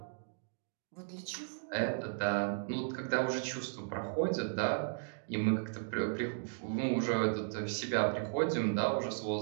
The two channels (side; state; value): left; silent; digital silence